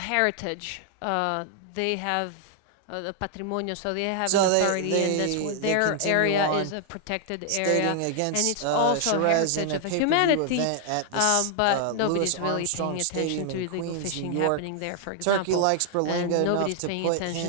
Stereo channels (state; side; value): different; both; correlation 0.00